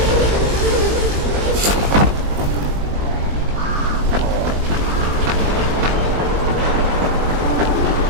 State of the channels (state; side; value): late; left; 20 ms